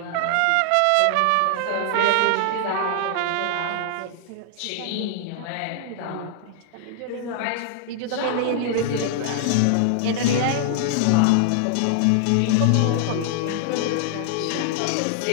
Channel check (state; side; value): different; both; correlation 0.00